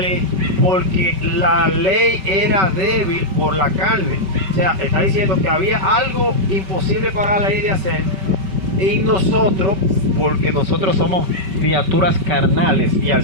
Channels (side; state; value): left; late; 5.2 ms